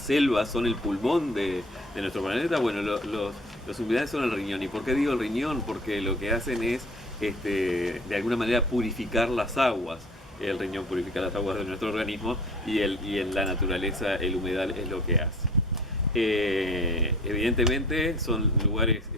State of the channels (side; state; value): both; normal; correlation 0.47